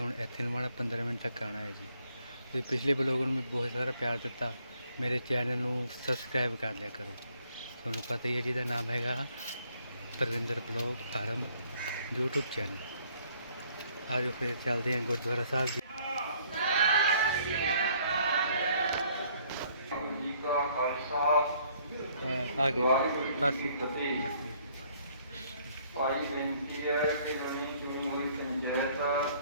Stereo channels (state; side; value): inverted; both; correlation -0.63